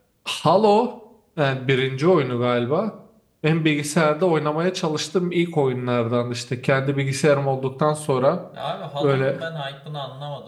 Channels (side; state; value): both; identical; correlation 1.00